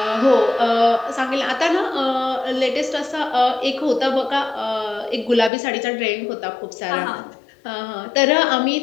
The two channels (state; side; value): drops out; right; at 5.5 s